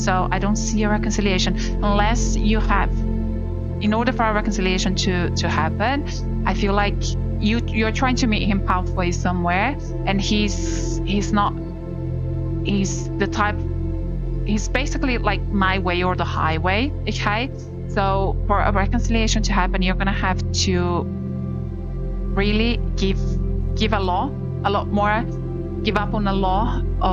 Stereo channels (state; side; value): identical; both; correlation 1.00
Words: I don't see a reconciliation unless you have, in order for a reconciliation to happen, I feel like you're trying to meet him halfway somewhere, and he's the type, he's basically like my way or the highway, okay? So for a reconciliation to happen, you're gonna have to really give a lot more, give up on a lot